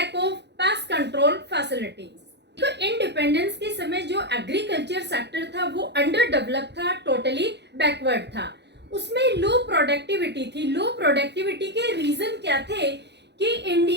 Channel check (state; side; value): late; left; 0.50 ms